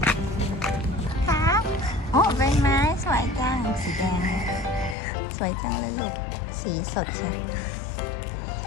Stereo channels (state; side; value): drops out; right; at 5.0 s